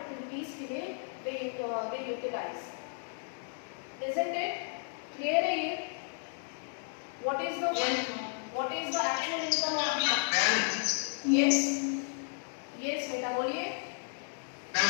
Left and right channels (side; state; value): right; silent; 56 dB below the other